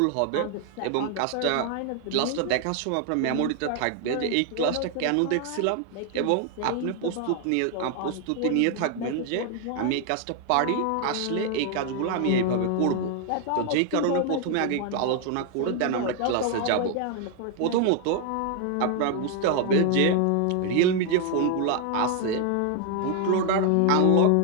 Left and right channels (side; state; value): both; different; correlation 0.00